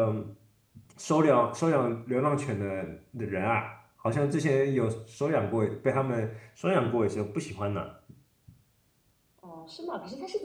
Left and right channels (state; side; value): identical; both; correlation 1.00